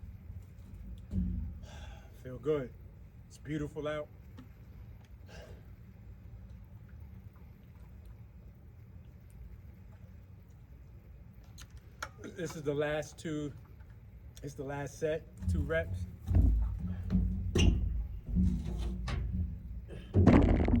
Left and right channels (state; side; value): identical; both; correlation 1.00